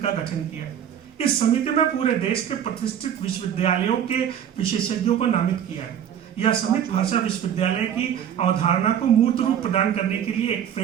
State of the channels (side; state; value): left; quieter; 9.2 dB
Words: गठन किया। इस समिति में पूरे देश के प्रतिष्ठित विश्वविद्यालयों के विशेषज्ञों को नामित किया है। यह समिति भाषा विश्वविद्यालय की अवधारणा को मूर्त रूप प्रदान करने के लिए एक